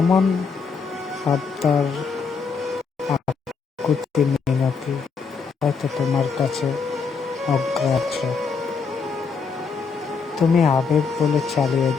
আবদার, আকুতি মিনতি হয়তো তোমার কাছে অগ্রাহ্য। তুমি আবেগ বলে চালিয়ে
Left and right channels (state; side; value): quieter; right; 5.3 dB